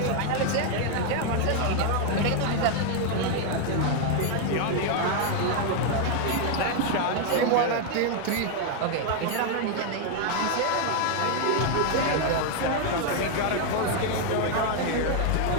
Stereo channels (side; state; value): both; different; correlation 0.00